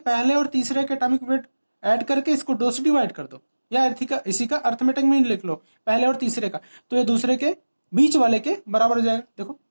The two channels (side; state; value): both; inverted; correlation -1.00